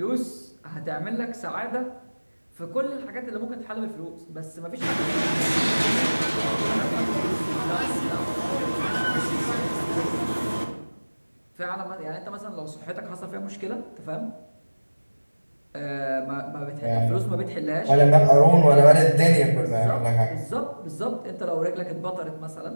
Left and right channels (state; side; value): inverted; both; correlation -1.00